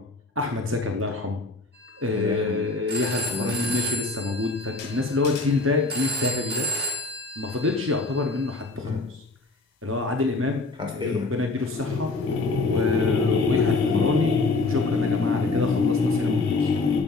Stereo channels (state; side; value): quieter; right; 3.4 dB